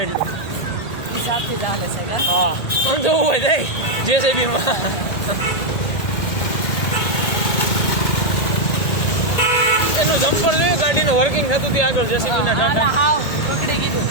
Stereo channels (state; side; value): late; right; 1.8 ms